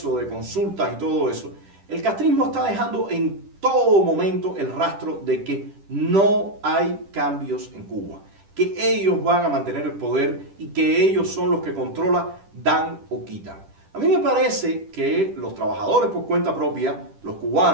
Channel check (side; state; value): left; late; 10 ms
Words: de consultas y todo eso. El castrismo está dejando en todo momento el rastro de que no hay cambios en Cuba, que ellos van a mantener el poder y que ellos son los que controlan, dan o quitan. A mí me parece que los trabajadores por cuenta propia, los